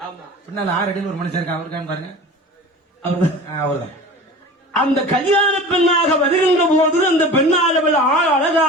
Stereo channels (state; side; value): normal; both; correlation 0.37